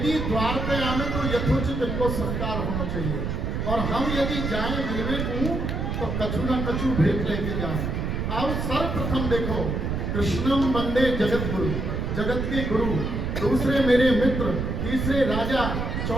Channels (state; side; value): noise; right; rumble, 2 dB below the sound